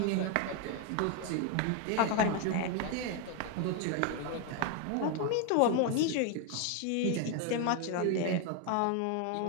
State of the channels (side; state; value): both; different; correlation 0.01